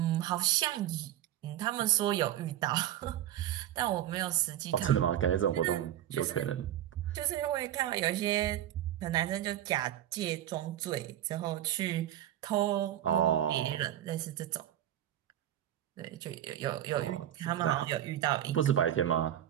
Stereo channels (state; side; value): quieter; left; 11.9 dB